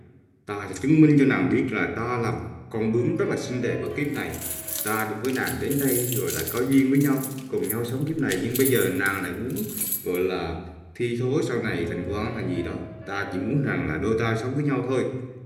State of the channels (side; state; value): both; identical; correlation 1.00